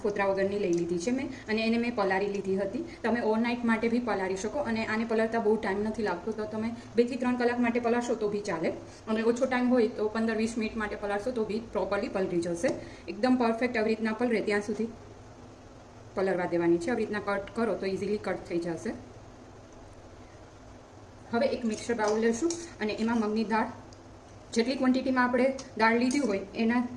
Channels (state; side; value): identical; both; correlation 1.00